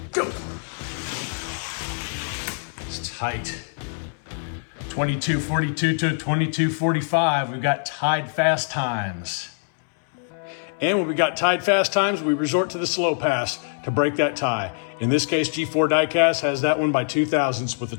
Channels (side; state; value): right; silent; 63 dB below the other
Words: go. It's tight. 22:42 to 22:45. We've got tied fast times. And when we got tied fast times, we resort to the slow pass to break that tie. In this case, G4 Diecast has that one by 2 thousandths with a